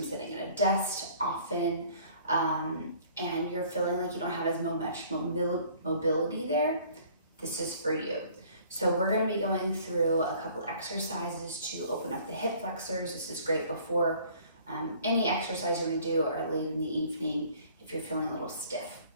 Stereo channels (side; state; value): both; inverted; correlation -0.54